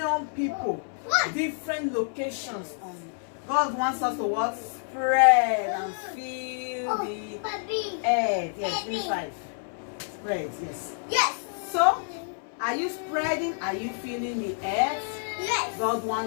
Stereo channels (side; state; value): right; silent; 59 dB below the other